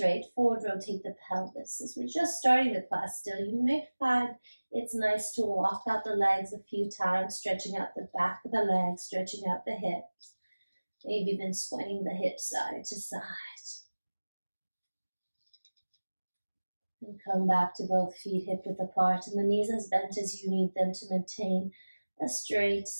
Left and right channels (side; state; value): both; inverted; correlation -1.00